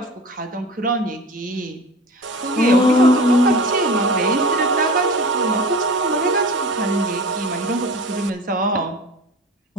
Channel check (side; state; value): both; normal; correlation 0.35